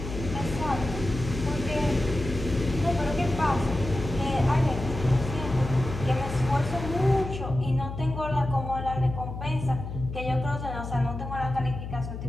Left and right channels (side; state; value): left; noise; hum, 8 dB below the sound